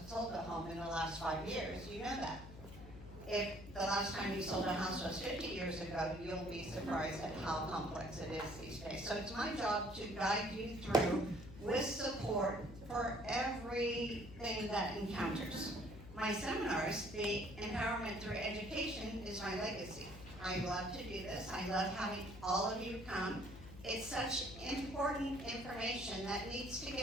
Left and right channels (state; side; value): noise; left; hum, 14 dB below the sound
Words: sold a home in the last 5 years, you know that. If the last time you sold a house was 50 years ago, you'll be surprised at how complex it is these days. So it's my job to guide you through with support for everything that encounters. My seminars, the empowerment through education, is my legacy. I love to do this. I love having all of you come. It's such important information that needs to